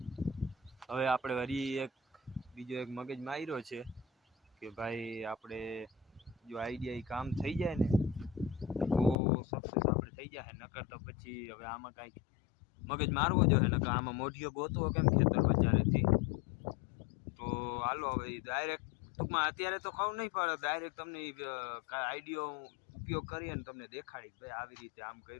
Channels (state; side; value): drops out; right; at 9.2 s